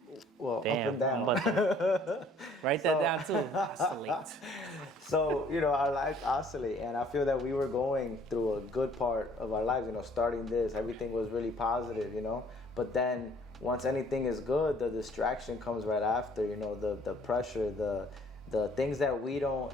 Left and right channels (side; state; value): both; normal; correlation 0.58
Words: Well, Damn, up and down. Write that down too. Oscillate. So, our lives oscillate, and I feel that we were going through a good part of our lives, starting this, everything was really positive, but then once anything is good, the distraction comes right after, the pressure, the things that we don't